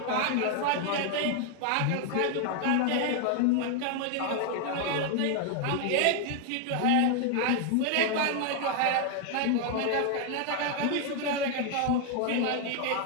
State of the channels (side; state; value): both; different; correlation 0.00